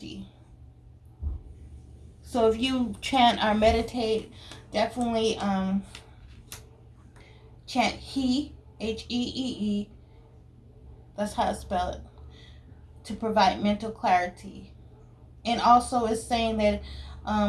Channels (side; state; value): both; identical; correlation 1.00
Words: So if you chant or meditate, definitely chant He, Hee. That's how I spell it, to provide mental clarity. And also it's saying that